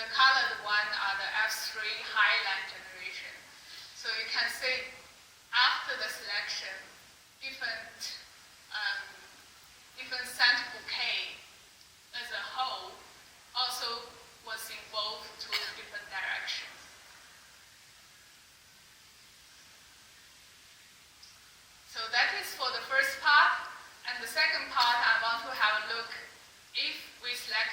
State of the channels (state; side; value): identical; both; correlation 1.00